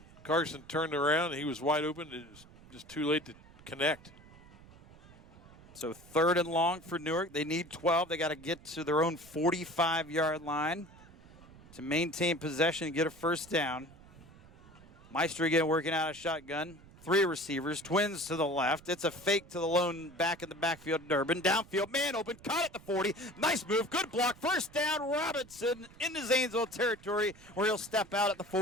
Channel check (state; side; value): noise; right; rumble, 22 dB below the sound